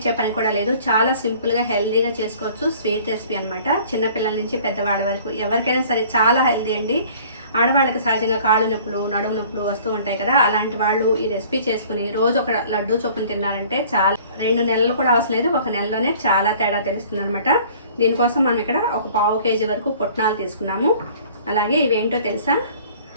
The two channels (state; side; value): inverted; both; correlation -0.51